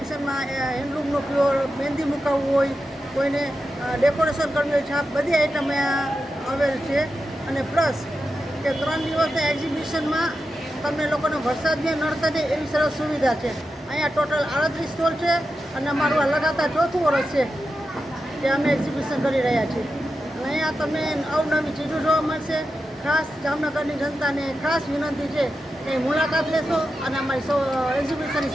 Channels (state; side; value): normal; both; correlation 0.89